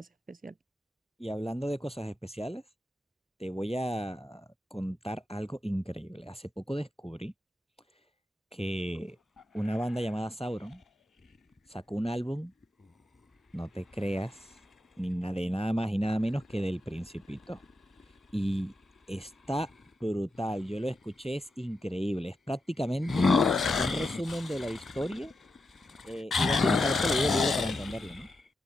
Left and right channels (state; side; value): normal; both; correlation 0.87